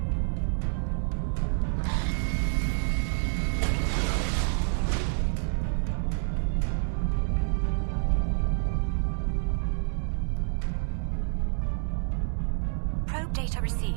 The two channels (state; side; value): silent; left; 59 dB below the other